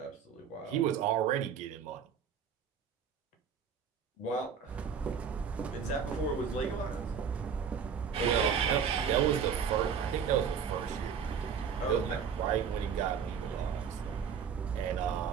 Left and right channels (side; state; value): left; quieter; 7.1 dB